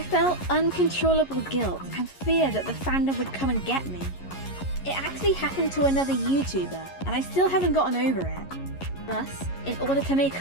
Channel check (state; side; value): late; right; 11 ms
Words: uncontrollable guilt and fear that the fandom would come and get me. It actually happened to another YouTuber, and I still haven't gotten over it. Thus, in order to